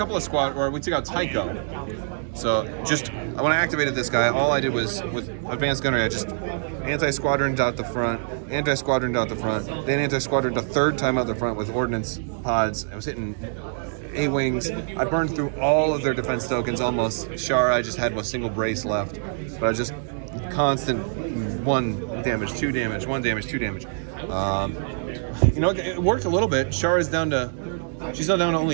of we took out Tycho. So when I activated this guy, all I did was, with advanced gunnery, I just anti-squadroned out the front, anti-squadroned out the front, then anti-squadroned a 3rd time out the front with ordnance pods. I was hitting A-wings. I burned through all of their defense tokens almost. Shara, I just had a single brace left, but I just constant 1 damage, 2 damage, 1 damage, 2 damage. It worked a little bit. Shara's she's now down to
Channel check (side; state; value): left; silent; digital silence